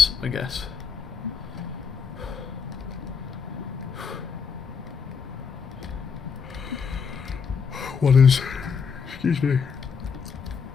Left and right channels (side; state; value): right; quieter; 5.9 dB